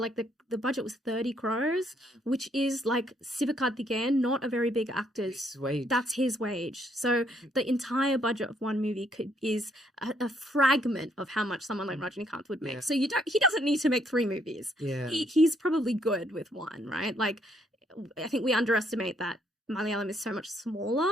the budget was 30 crores, which is like Sivakarthikeyan, not a very big actor's wage. That's his wage. So the entire budget of one movie is a fragment of how much someone like Rajinikanth would make. So he doesn't need to make 3 movies. Yeah. He's probably good with one, right? Like, I think we underestimate that Malayalam is so much smaller.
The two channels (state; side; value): normal; both; correlation 0.70